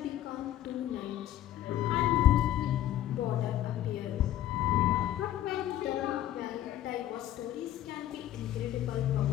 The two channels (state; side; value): quieter; right; 12.8 dB